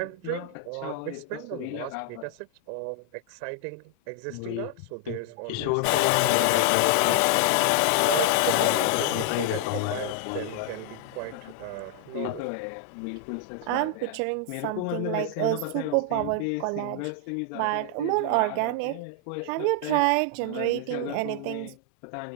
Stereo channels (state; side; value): different; both; correlation -0.01